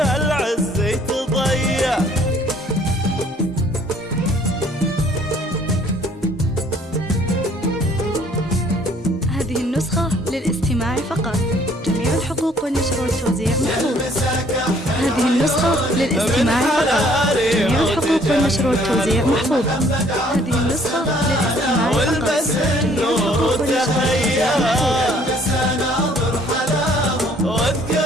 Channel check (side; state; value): both; normal; correlation 0.60